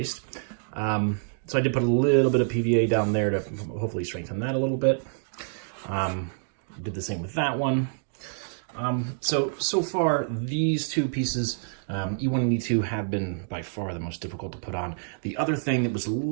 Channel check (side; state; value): left; silent; digital silence